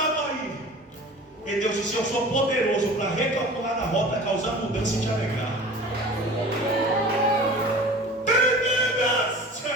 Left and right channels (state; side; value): normal; both; correlation 0.40